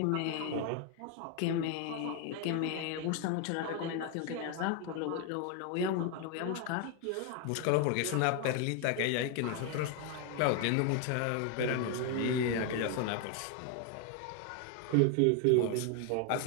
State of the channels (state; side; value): different; both; correlation 0.01